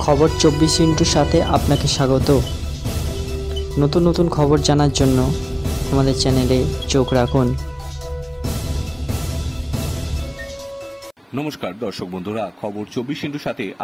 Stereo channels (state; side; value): identical; both; correlation 1.00